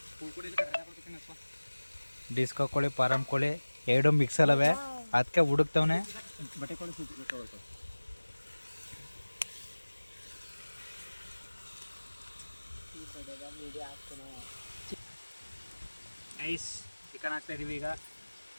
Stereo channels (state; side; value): inverted; both; correlation -1.00